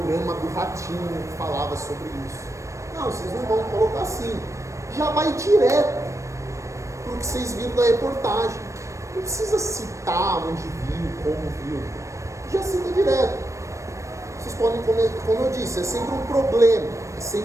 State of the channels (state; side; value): late; left; 0.15 ms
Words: do Ratinho, que falava sobre isso. Não, vocês não vão colocar assim. Já vai direto para o que vocês viram da reportagem. Não precisa citar onde viu, como viu. Já cita direto. Vocês podem comer, como eu disse, é sempre um problema, é